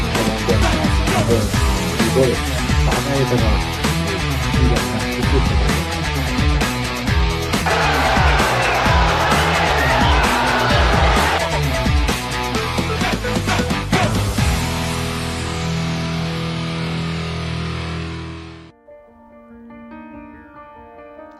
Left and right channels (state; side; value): identical; both; correlation 1.00